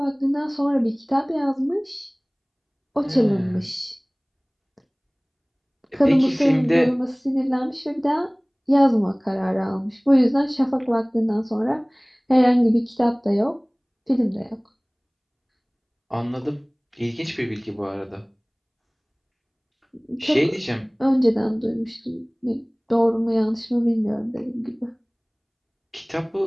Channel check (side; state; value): both; identical; correlation 1.00